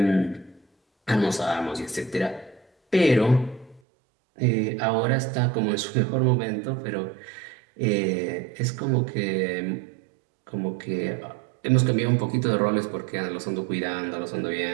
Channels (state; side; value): drops out; left; at 3.8 s